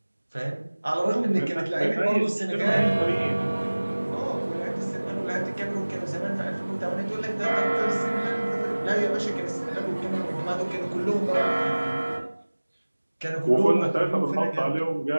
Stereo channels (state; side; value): inverted; both; correlation -1.00